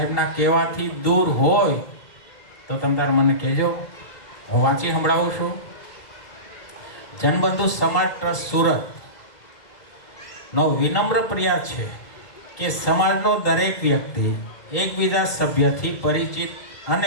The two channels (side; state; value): right; late; 1.9 ms